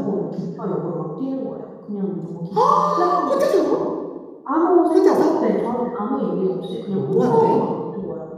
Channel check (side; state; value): both; identical; correlation 1.00